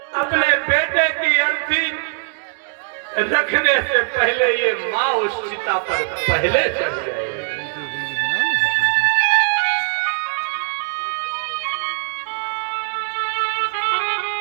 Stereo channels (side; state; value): left; quieter; 38.9 dB